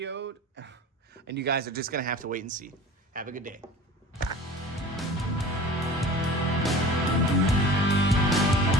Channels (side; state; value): both; normal; correlation 0.39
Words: and you guys are just going to have to wait and see. Have a good day.